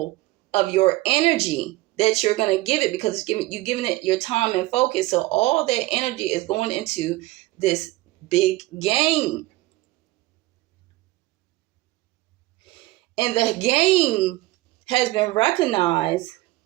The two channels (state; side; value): quieter; left; 19.2 dB